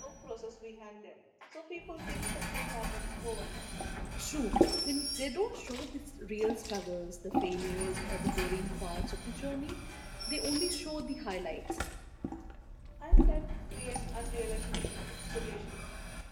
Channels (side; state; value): both; identical; correlation 1.00